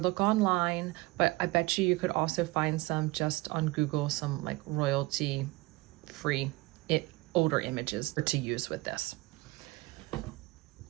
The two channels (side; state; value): left; quieter; 21.7 dB